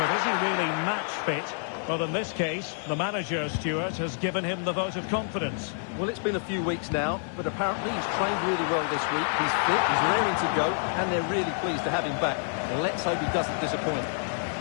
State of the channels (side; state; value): right; silent; digital silence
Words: is he really match fit? Well, in this case, the manager, Stuart, has given him the vote of confidence. Well, it's been a few weeks now, but apparently he's trained really well this week. He's fit, he's raring to go, and they're really pleased to have him back. Well, let's hope he doesn't disappoint.